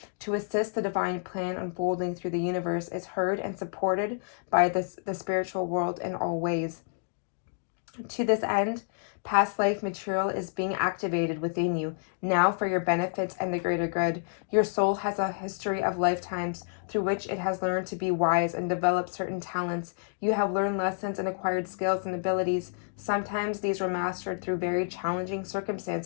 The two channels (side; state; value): right; silent; digital silence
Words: to assist the divine plan unfolding through the universe is heard and supported by the spiritual world in all ways. To this end, past life material is being activated within you now for your benefits and the greater good. Your soul has a history of lifetimes through which it has learned to be wise and developed certain talents. You have learned lessons and acquired skills and abilities. Sometimes these were mastered through very challenging